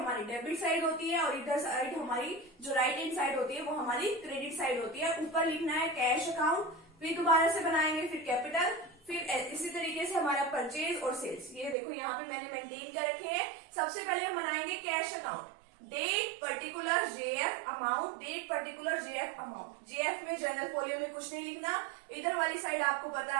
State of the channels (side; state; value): left; drops out; at 11.8 s